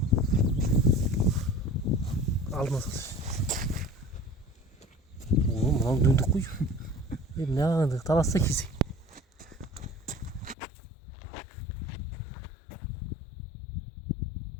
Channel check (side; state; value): right; drops out; at 10.6 s